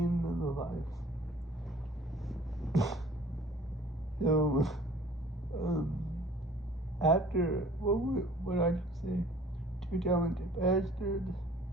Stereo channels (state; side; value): normal; both; correlation 0.50